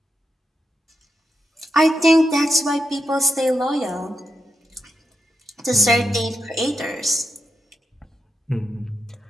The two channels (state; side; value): normal; both; correlation 0.85